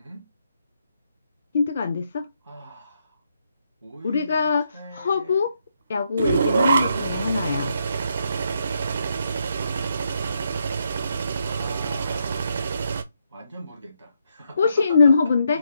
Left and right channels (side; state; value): both; inverted; correlation -0.78